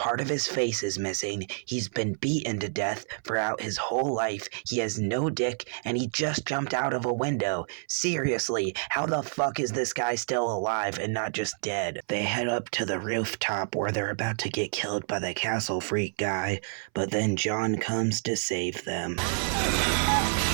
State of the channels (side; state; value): left; silent; 59 dB below the other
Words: of his face is missing, he's been beaten to death throughout his whole life, he has no dick, and he just jumped out of a window. Seriously, how the fuck is this guy still alive and not just dead? They head up to the rooftop where they're about to get killed by the castle freak guy, but then John comes to save them.